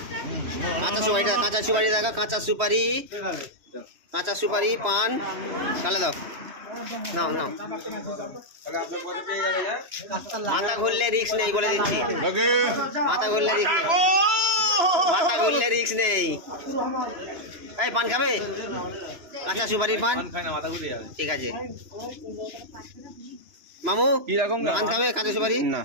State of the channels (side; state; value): left; late; 2.9 ms